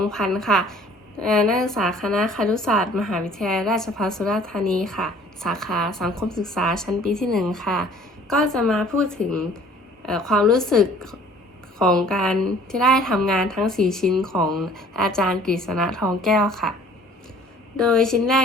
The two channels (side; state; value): both; normal; correlation 0.52